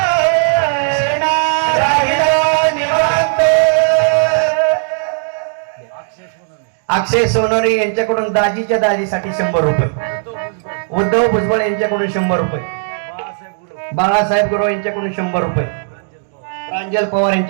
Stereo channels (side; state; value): left; silent; digital silence